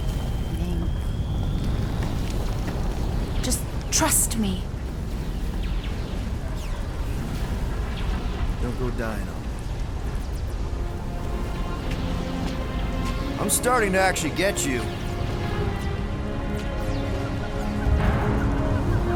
Ming. Just trust me. Don't go dying on me. I'm starting to actually get you.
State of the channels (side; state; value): both; identical; correlation 1.00